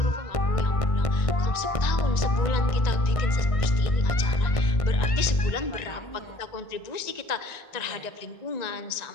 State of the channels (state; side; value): late; right; 1.9 ms